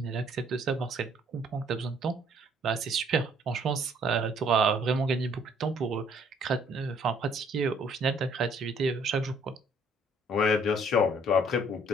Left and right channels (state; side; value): normal; both; correlation 0.62